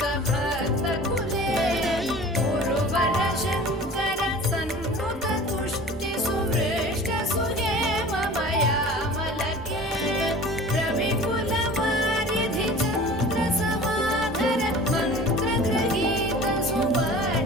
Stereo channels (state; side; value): normal; both; correlation 0.41